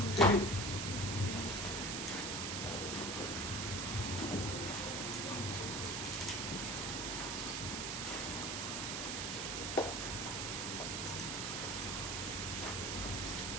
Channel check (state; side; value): noise; right; hiss, 1 dB below the sound